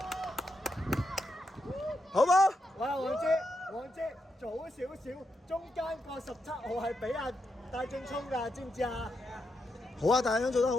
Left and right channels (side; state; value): both; normal; correlation 0.83